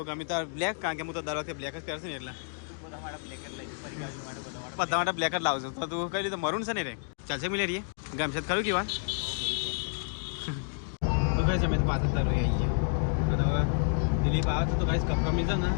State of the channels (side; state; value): right; silent; 58 dB below the other